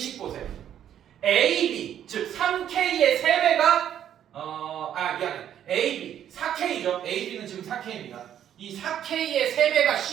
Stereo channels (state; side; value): quieter; left; 10.2 dB